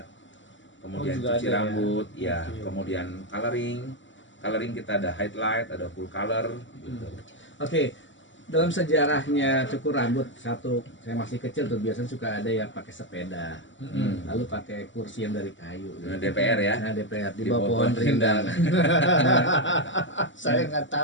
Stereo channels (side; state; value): right; late; 0.55 ms